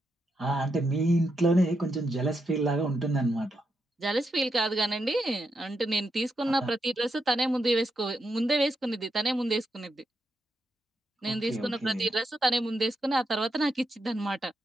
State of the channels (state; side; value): normal; both; correlation 0.83